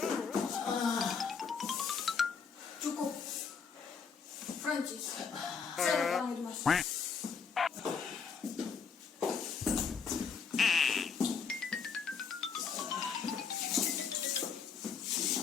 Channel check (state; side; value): quieter; right; 5.9 dB